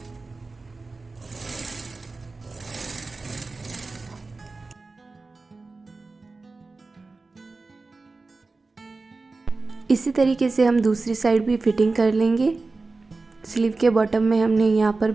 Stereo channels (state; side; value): quieter; left; 3.7 dB